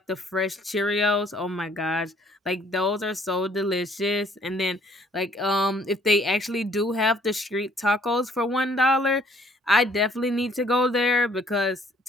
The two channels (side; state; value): both; normal; correlation 0.62